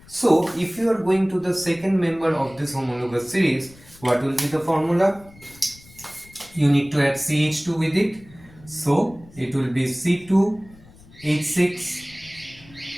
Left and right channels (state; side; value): noise; left; rumble, 23 dB below the sound